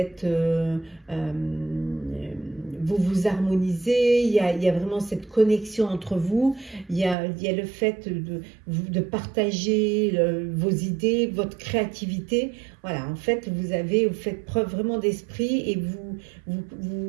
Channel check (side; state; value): left; drops out; at 7.2 s